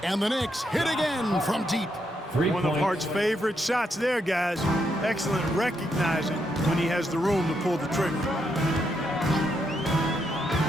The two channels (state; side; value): normal; both; correlation 0.79